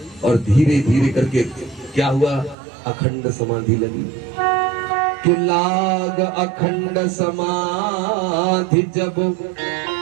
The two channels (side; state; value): left; drops out; at 2.6 s